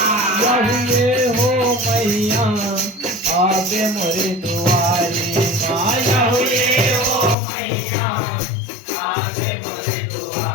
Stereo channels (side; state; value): right; drops out; at 7.4 s